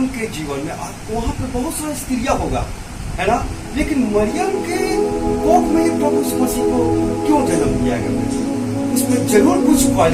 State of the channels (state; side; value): identical; both; correlation 1.00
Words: के जीवन में आप वहां पर बहुत सारी स्त्रियां होगा, है ना, लेकिन मरियम के कोख में ही प्रभु यीशु मसीह को क्यों जन्म दिया गया? उसमें जरूर कुछ